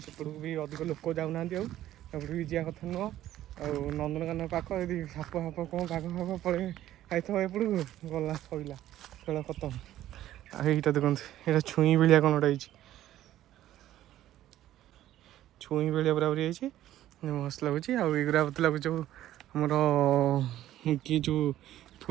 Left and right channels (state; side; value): quieter; left; 13.2 dB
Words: ସେପଟକୁ ବି ଅଧିକ ଲୋକ ଯାଉନାହାନ୍ତି। ଆଉ ଏପଟକୁ ବି ଯିବା କଥା ନୁହଁ। ଆଉ ନନ୍ଦନକାନନ ପାଖ, ଯଦି ସାପ କ'ଣ ବାଘ ଫାଘ ପଳେଇ ଯାଇଥିବ ଏପଟକୁ ଗଲା ସଇଲା, ଖେଳ ଖତମ। ଆଉ ଏଇଟା ଦେଖନ୍ତୁ, ଏଇଟା ଛୁଇଁ ଭଳିଆ କ'ଣ ଗୋଟେ ହେଇଛି, ଛୁଇଁ ଭଳିଆ ପୁରାପୁରି ହେଇଛି, ମସ୍ତ ଲାଗୁଛି। ଆଉ ଏଇଗୁରା ମତେ ଲାଗୁଛି ଯେଉଁ ଆମର କି ଯେଉଁ